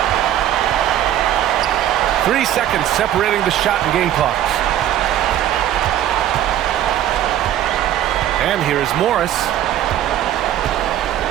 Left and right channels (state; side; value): quieter; left; 11.8 dB